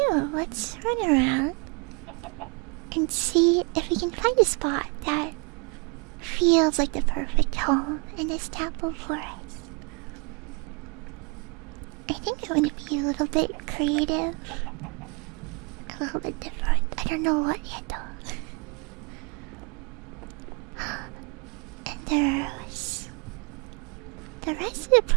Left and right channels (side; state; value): left; quieter; 32.5 dB